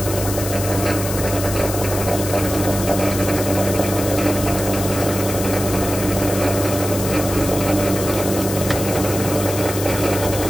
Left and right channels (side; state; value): left; noise; hiss, 7 dB below the sound